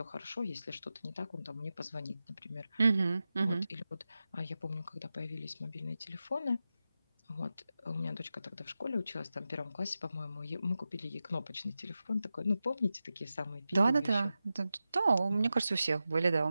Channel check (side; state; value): both; inverted; correlation -0.92